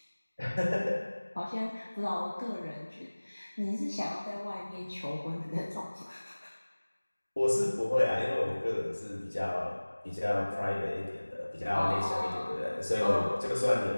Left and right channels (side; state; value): both; inverted; correlation -1.00